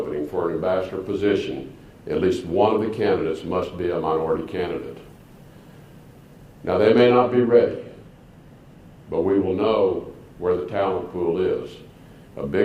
for an ambassador position, at least one of the candidates must be a minority candidate. Now, they may not be ready, but we will know where the talent pool is. A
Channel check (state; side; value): identical; both; correlation 1.00